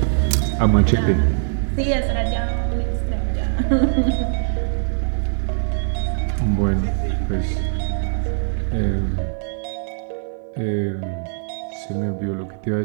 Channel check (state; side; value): silent; left; digital silence